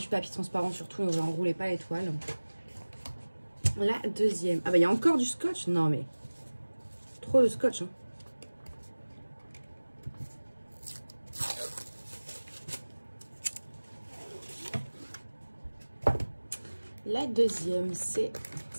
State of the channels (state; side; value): inverted; both; correlation -1.00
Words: papier transparent surtout. Donc, j'enroulais pas les toiles. La deuxième. Ah bah, il y a encore du scotch. Non, mais trop de scotch, hein. La deuxième, c'est